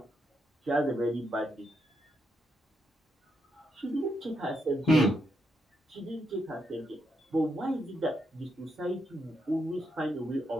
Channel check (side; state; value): both; normal; correlation 0.81